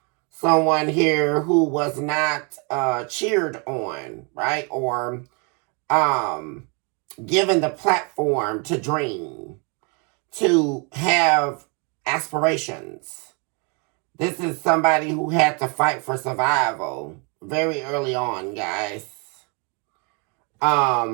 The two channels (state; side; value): quieter; left; 33.9 dB